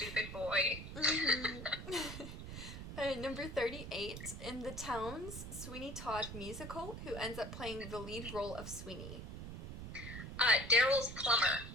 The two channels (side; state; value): right; noise; rumble, 9 dB below the sound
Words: boy. Mm-hmm. Number 38. In the Towns Sweeney Todd musical, who ends up playing the lead role of Sweeney? Daryl's plumber.